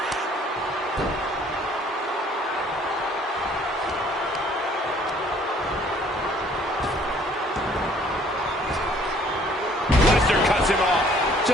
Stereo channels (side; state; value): both; normal; correlation 0.58